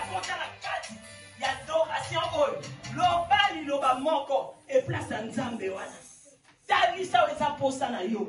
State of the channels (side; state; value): both; identical; correlation 1.00